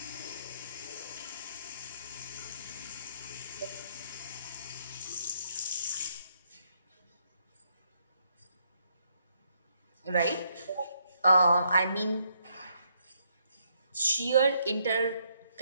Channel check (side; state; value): both; inverted; correlation -0.73